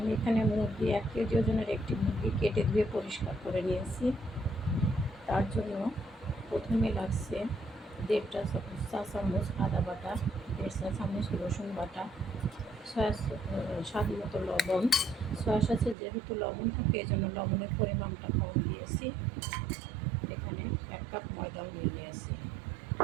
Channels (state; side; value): drops out; left; at 16.0 s